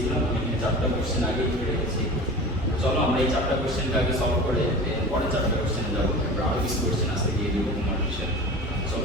আমি এখানে 4টা কোশ্চেন আগে লিখে রেখেছি। চলো আমরা এই 4টা কোশ্চেনকে আগে সলভ করে পরে 4টা কোশ্চেনে যাবো। আমরা আরও কিছু কোশ্চেন আজকে দিয়ে দেবো হোমওয়ার্ক হিসেবে।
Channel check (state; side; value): normal; both; correlation 0.35